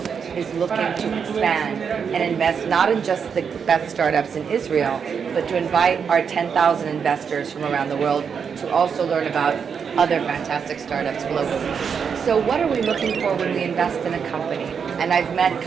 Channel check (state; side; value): quieter; left; 6.6 dB